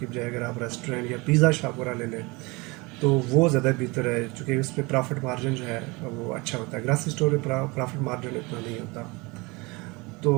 बजाय अगर आप रेस्टोरेंट या पिज़्ज़ा शॉप वगैरह ले लें तो वो ज़्यादा बेहतर है, क्योंकि उस पर प्रॉफिट मार्जिन जो है वो अच्छा होता है। ग्रासरी स्टोर में प्रॉफिट मार्जिन इतना नहीं होता। तो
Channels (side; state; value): left; quieter; 25.4 dB